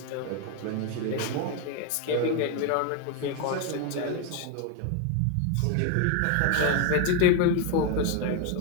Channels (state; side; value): different; both; correlation 0.01